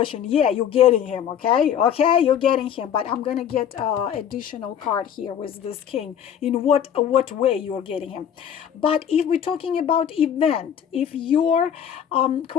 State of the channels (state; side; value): quieter; right; 9.0 dB